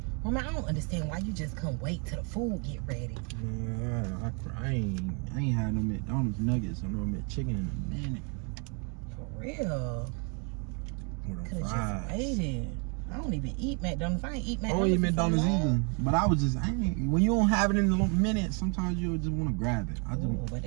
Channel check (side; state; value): left; quieter; 36.7 dB